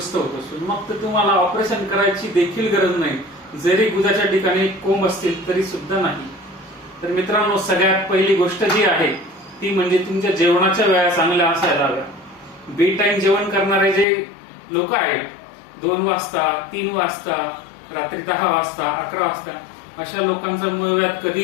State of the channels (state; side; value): drops out; right; at 14.1 s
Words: होत असतो. मग तर तुम्हाला ऑपरेशन करायची देखील गरज नाही, जरी गुदाच्या ठिकाणी कोंब असतील तरी सुद्धा नाही. तर मित्रांनो, सगळ्यात पहिली गोष्ट जी आहे ती म्हणजे तुमच्या जेवणाच्या वेळा चांगल्या असायला हव्या. बे टाइम जेवण करणारे जे लोक आहेत, 2 वाजता, 3 वाजता, रात्री 10 वाजता, 11 वाजता, अशा लोकांचा मूळव्याध